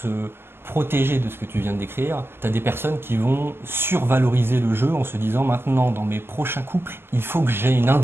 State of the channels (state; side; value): late; left; 0.11 ms